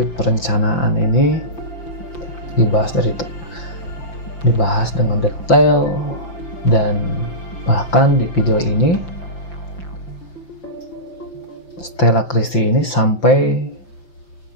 perencanaan ini dibahas dengan detail, dan bahkan di video ini Stella Christy ini sampai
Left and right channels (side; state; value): right; late; 5.9 ms